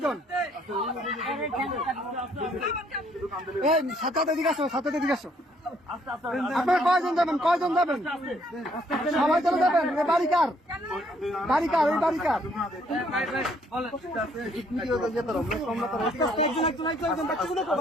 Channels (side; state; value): both; normal; correlation 0.66